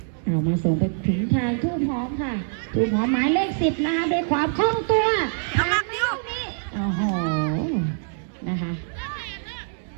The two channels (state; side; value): silent; left; 62 dB below the other